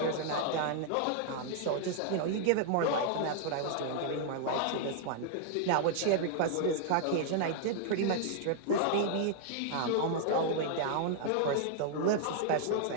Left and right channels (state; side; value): different; both; correlation -0.01